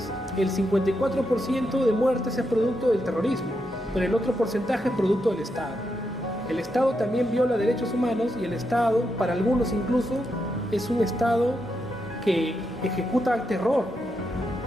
el 54% de muertes es producto del terrorismo, pero el otro porcentaje es producto del Estado. El Estado también viola derechos humanos, y el Estado, para algunos incluso, es un Estado que ejecuta terror.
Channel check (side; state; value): both; normal; correlation 0.83